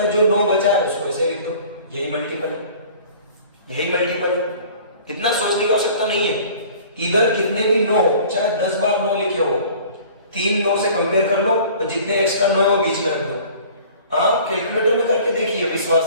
जो 9 बचा है उसको ऐसे लिख दो, यही मल्टीपल है, यही मल्टीपल है, इतना सोचने की आवश्यकता नहीं है। इधर कितने भी 9 हो, चाहे 10 बार 9 लिखे हो, 3 9 से कंपेयर कर लो, और जितने एक्स्ट्रा 9 है वो बीच में रख दो। आप कैलकुलेटर में करके देखिए,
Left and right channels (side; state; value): both; inverted; correlation -0.47